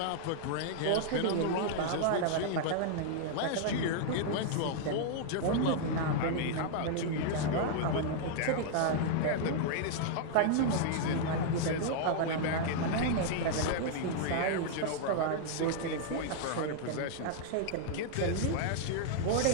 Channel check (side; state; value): both; different; correlation -0.01